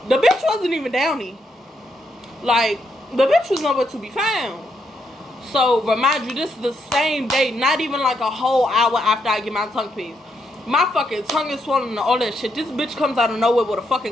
The bitch wasn't even down there. Like, the bitch was nowhere to be found. So, remind you, this is the same day, not even like a whole hour after I get my tongue pierced. My fucking tongue is swollen and all that shit. This bitch comes out of nowhere with a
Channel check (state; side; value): normal; both; correlation 0.78